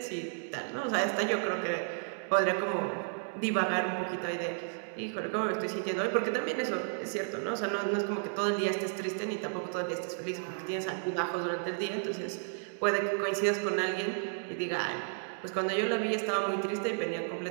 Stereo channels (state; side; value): silent; left; digital silence